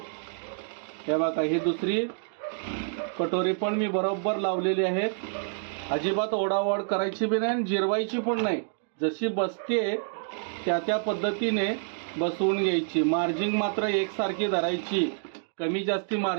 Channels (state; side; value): silent; left; digital silence